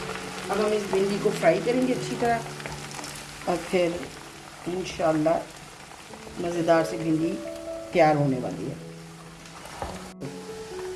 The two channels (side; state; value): both; identical; correlation 1.00